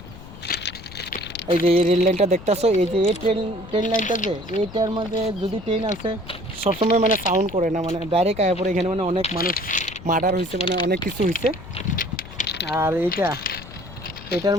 এই যে এই রেল লাইনটা দেখতেছো, এই যে এই ট্রেন লাইনটা, যে এইটার মধ্যে যদি ট্রেন আছে সবসময় মানে সাউন্ড করে না, মানে ডাইরেক্ট আয়া পরে এখানে মানে অনেক মানুষ মার্ডার হয়েছে, মানে অনেক কিছু হয়েছে। আর এটার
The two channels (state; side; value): noise; left; rumble, 15 dB below the sound